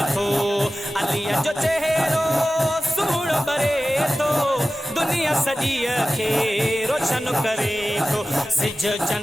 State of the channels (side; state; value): both; normal; correlation 0.96